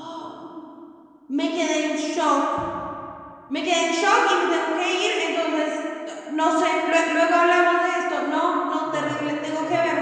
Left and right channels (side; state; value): both; identical; correlation 1.00